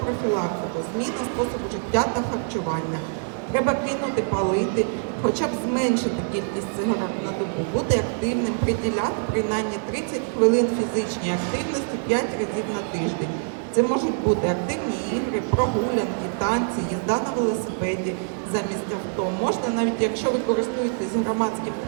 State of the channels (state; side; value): silent; left; 62 dB below the other